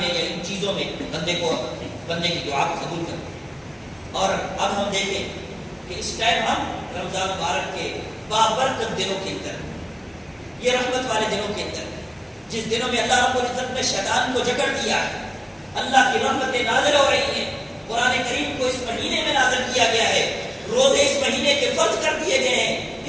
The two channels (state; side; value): identical; both; correlation 1.00